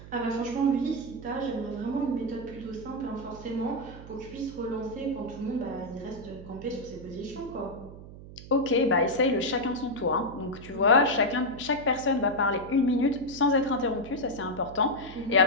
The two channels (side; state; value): right; noise; hum, 15 dB below the sound